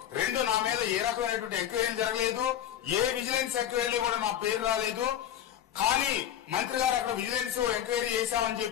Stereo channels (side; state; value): right; quieter; 10.9 dB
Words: రెండు, నా మీద ఏ రకమైనటువంటి ఎంక్వైరీ జరగలేదు. ఏ విజిలెన్స్ ఎంక్వైరీ కూడా నా పేరు రాలేదు. కానీ మంత్రి గారు అక్కడ విజిలెన్స్ ఎంక్వైరీ చేశామని